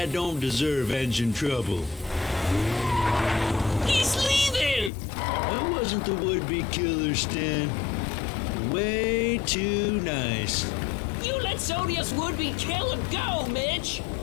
don't deserve engine trouble. He's leaving! That wasn't the would-be killer, Stan. Way too nice. You let Sonia's would-be killer go, Mitch!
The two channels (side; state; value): right; drops out; at 4.9 s